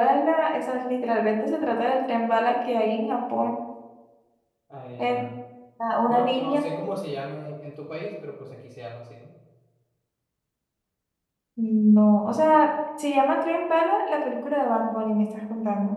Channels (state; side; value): identical; both; correlation 1.00